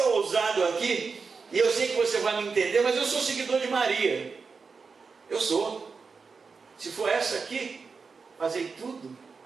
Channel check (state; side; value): quieter; left; 4.9 dB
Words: ousado aqui, e eu sei que você vai me entender, mas eu sou seguidor de Maria. Eu sou. Se for essa aqui, fazei tudo